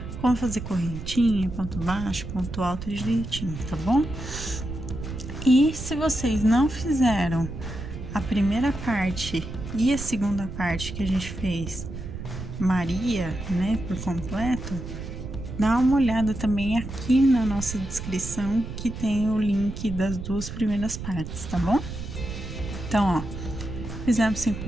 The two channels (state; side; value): noise; right; rumble, 8 dB below the sound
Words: como fazer correntinha, ponto baixo, ponto alto direitinho, tá bom? E se vocês não fizeram a primeira parte e a segunda parte que a gente fez Maria, né, por completo, dá uma olhada também aqui na nossa descrição que tem o link das 2 primeiras partes, tá bom? Então, ó, fizemos 5